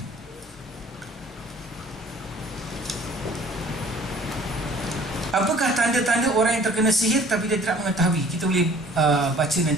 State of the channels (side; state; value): both; normal; correlation 0.52